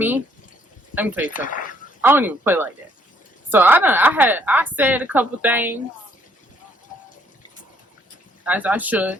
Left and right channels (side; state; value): both; normal; correlation 0.67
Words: Let me tell you something. I don't even play like that. So I said a couple things as I